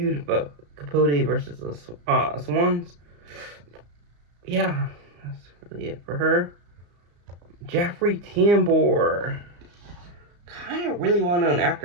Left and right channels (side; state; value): left; late; 34 ms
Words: Capote versus the Swans. Yeah, that's really it for her. Jeffrey Tambor, kind of really well-known